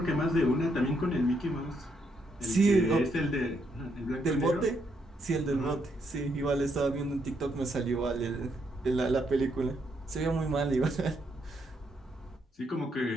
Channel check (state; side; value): normal; both; correlation 0.76